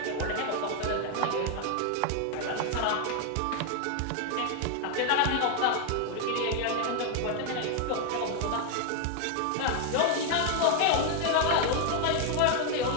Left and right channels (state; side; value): different; both; correlation 0.01